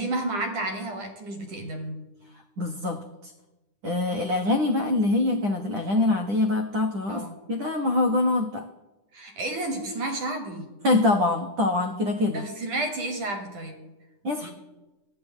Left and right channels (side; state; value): left; late; 10 ms